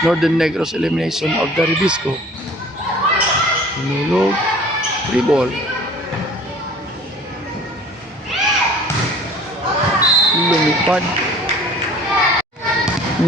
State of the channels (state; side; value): normal; both; correlation 0.48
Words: Northern Negros elimination of the Ribisco. Tinulog, 3 ball. Lumipad.